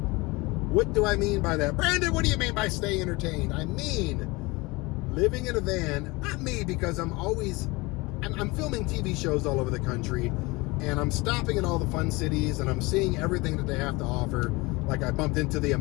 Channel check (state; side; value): quieter; right; 23.9 dB